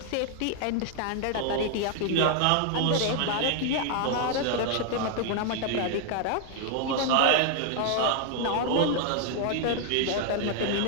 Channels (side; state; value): both; different; correlation 0.00